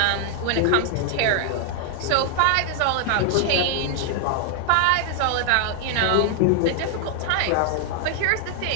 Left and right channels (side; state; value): both; different; correlation 0.00